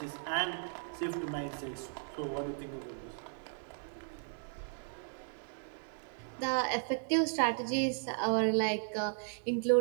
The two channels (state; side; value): silent; left; 54 dB below the other